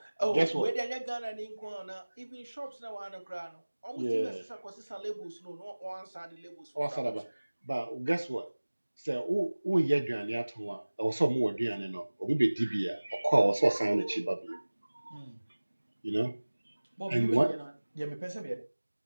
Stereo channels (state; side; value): inverted; both; correlation -1.00